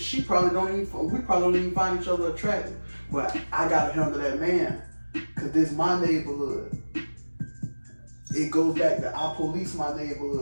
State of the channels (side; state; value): both; inverted; correlation -1.00